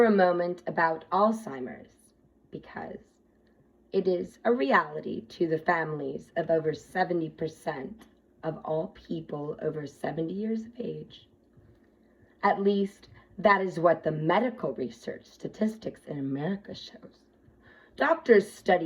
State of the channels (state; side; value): identical; both; correlation 1.00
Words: a moment about Alzheimer's, because it is a reality to the families of over 70% of all people over 70 years of age. At least, that is what the medical research statistics in America shows. Doctors